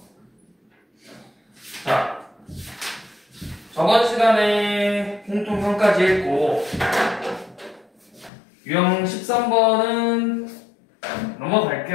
자, 저번 시간에 공통형까지 했고 유형 13번은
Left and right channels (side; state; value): right; drops out; at 8.3 s